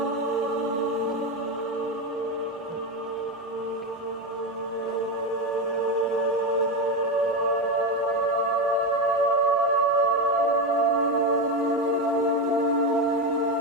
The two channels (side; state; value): both; normal; correlation 0.13